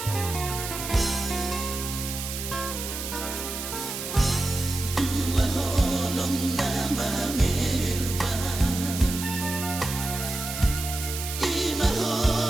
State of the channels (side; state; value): right; noise; hiss, 6 dB below the sound